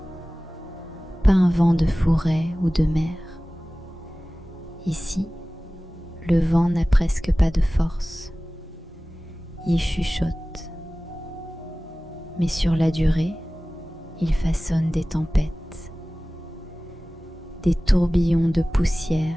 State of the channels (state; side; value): normal; both; correlation 0.97